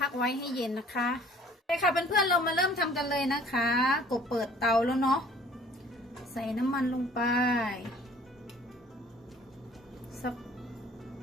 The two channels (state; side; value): normal; both; correlation 0.53